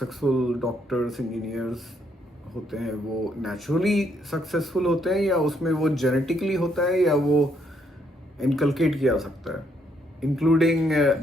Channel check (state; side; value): normal; both; correlation 0.73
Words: डॉक्टर्स, इंजीनियर्स होते हैं वो नेचुरली सक्सेसफुल होते हैं, या उसमें वो जेनेटिकली होता है, या वो इनकलकेट किया जा सकता है, इंक्लूडिंग